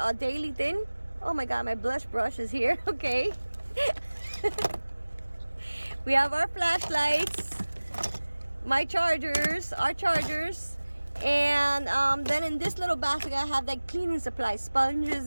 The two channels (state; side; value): inverted; both; correlation -1.00